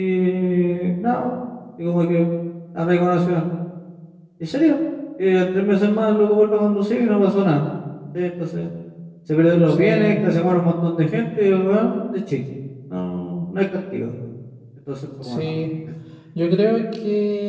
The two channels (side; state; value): both; identical; correlation 1.00